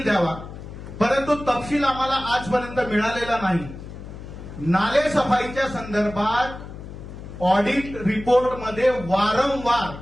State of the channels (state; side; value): noise; left; hum, 12 dB below the sound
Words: द्यावा, परंतु तपशील आम्हाला आजपर्यंत मिळालेला नाही. नाले सफाईच्या संदर्भात ऑडिट रिपोर्टमध्ये वारंवार